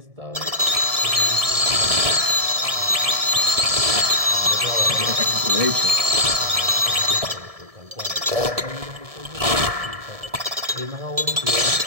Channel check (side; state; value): left; late; 1.7 ms